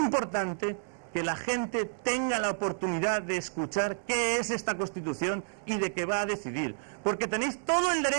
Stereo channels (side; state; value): left; silent; 58 dB below the other